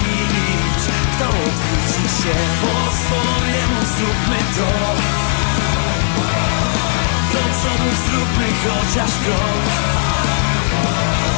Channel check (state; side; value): silent; right; digital silence